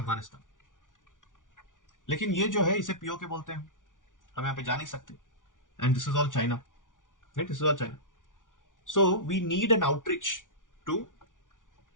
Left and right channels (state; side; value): late; right; 0.88 ms